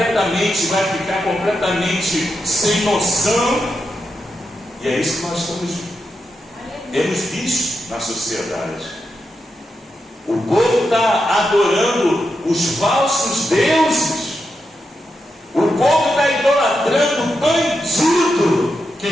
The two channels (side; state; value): both; normal; correlation 0.86